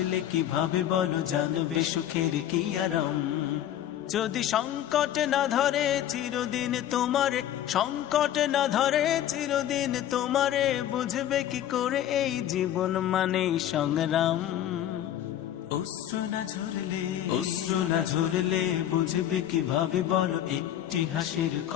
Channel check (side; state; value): right; quieter; 11.5 dB